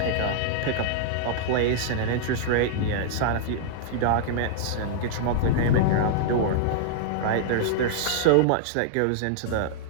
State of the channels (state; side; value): different; both; correlation -0.01